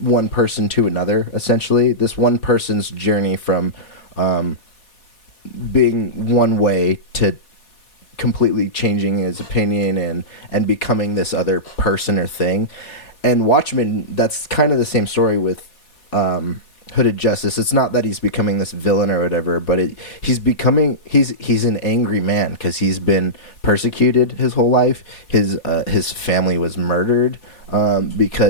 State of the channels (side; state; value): right; late; 4.2 ms